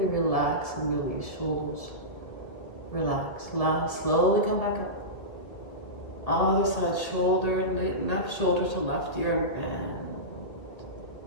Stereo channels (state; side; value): late; right; 1.8 ms